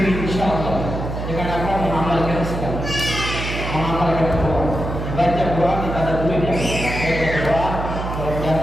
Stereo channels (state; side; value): noise; right; hum, 5 dB below the sound